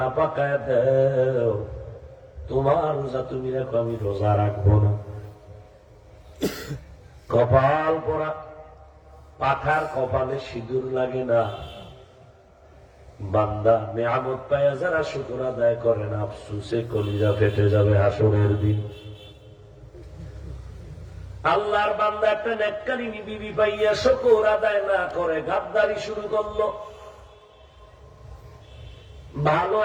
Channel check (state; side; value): identical; both; correlation 1.00